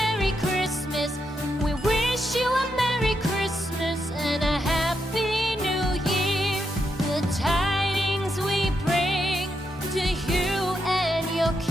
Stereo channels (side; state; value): both; normal; correlation 0.82